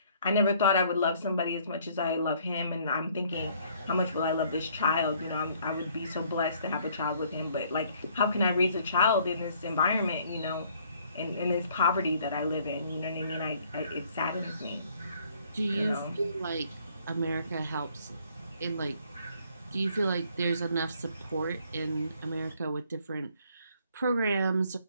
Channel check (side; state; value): both; inverted; correlation -0.62